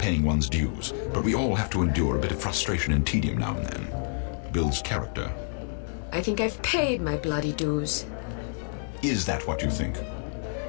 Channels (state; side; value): silent; right; digital silence